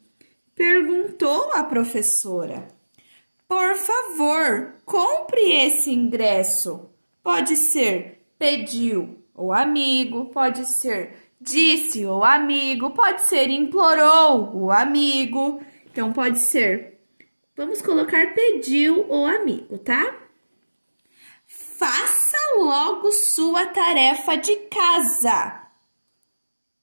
Perguntou a professora. Por favor, compre esse ingresso. Pode ser pediu ou amigo, pode ser disse o amigo, pode ser implorou o amigo. Então, pode ser, vamos colocar pediu o amigo, tá? Faça logo sua tarefa de casa.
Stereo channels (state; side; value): inverted; both; correlation -1.00